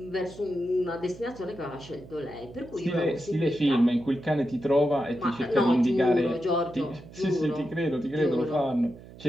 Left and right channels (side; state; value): right; noise; hum, 18 dB below the sound